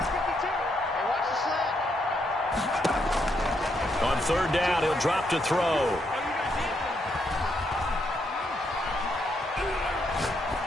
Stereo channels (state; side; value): normal; both; correlation 0.77